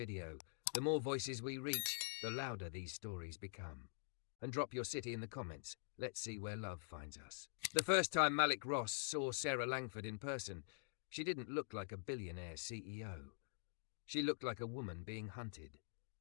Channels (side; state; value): right; silent; digital silence